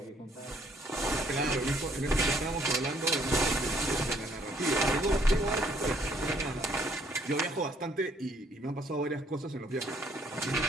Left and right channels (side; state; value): both; normal; correlation 0.65